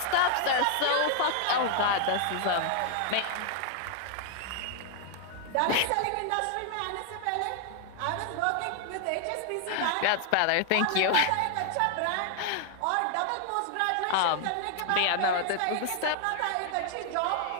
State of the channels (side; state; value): both; different; correlation 0.00